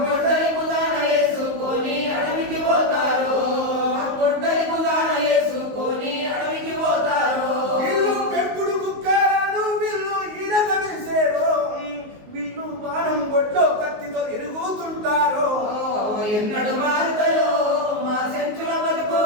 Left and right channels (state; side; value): late; left; 19 ms